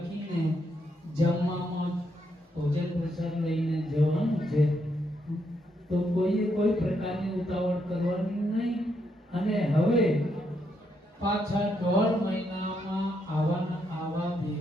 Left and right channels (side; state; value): both; normal; correlation 0.78